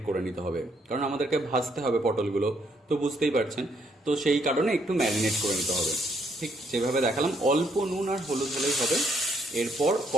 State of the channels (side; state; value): both; normal; correlation 0.71